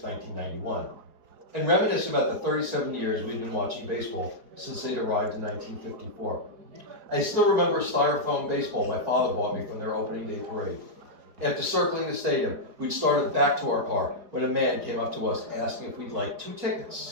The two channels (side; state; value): left; late; 4.5 ms